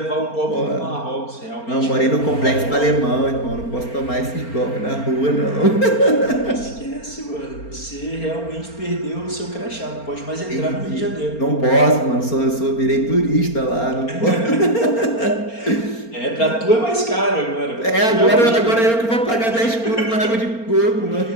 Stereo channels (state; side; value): late; right; 4.4 ms